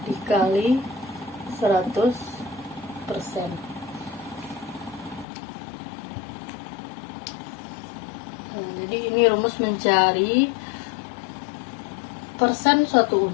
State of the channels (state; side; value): drops out; right; at 5.2 s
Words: dikali 100%. Nah, jadi ini rumus mencari persen suatu